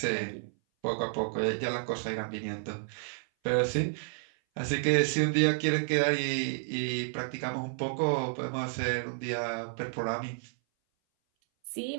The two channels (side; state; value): left; silent; 57 dB below the other